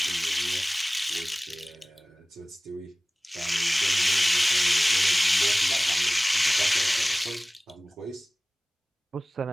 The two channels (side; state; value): both; normal; correlation 0.98